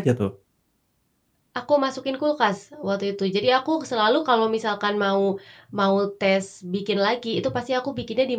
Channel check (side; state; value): both; identical; correlation 1.00